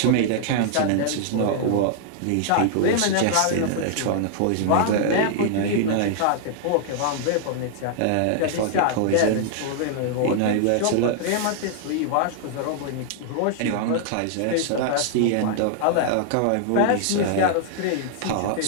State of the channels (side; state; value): both; different; correlation -0.01